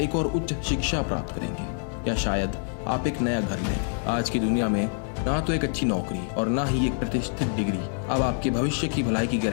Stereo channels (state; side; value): silent; right; 59 dB below the other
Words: और उच्च शिक्षा प्राप्त करेंगे, या शायद आप एक नया घर लेंगे। आज की दुनिया में ना तो एक अच्छी नौकरी और ना ही एक प्रतिष्ठित डिग्री अब आपके भविष्य की भलाई की